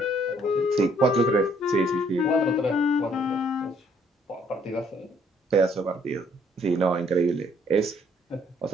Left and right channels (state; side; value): normal; both; correlation 0.65